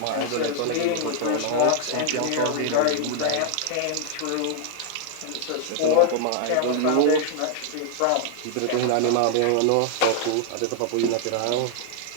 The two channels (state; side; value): different; both; correlation 0.00